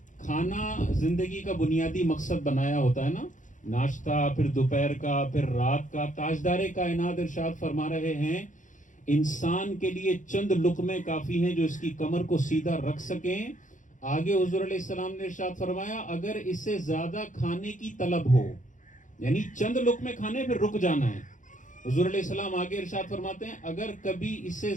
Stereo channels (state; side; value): late; right; 0.37 ms